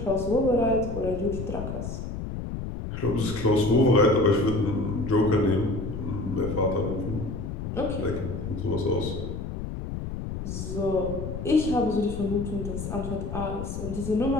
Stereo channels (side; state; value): left; noise; rumble, 6 dB below the sound